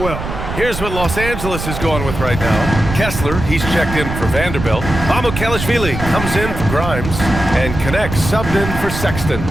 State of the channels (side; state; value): right; noise; rumble, 6 dB below the sound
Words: well. Here's what Los Angeles is going with right now. Kessler, he's checked in for Vanderbilt. Mamukelashvili comes in for Grimes and connects, subbed in for Sexton.